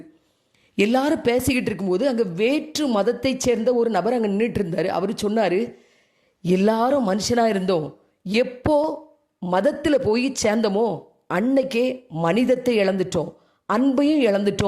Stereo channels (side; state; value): both; identical; correlation 1.00